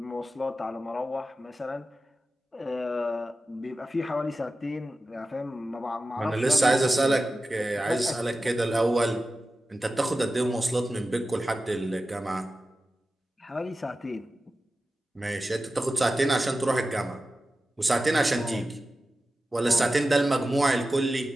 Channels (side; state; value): both; normal; correlation 0.93